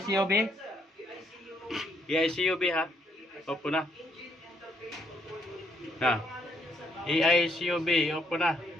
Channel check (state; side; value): normal; both; correlation 0.71